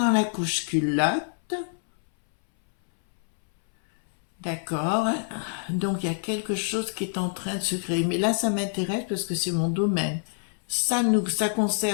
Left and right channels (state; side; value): silent; right; 61 dB below the other